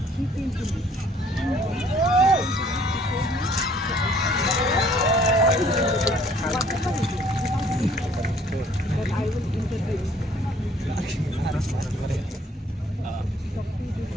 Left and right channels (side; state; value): both; normal; correlation 0.59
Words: She came to me. But I will interview.